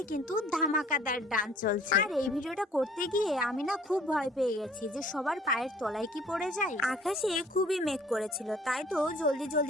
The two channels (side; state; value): both; normal; correlation 0.54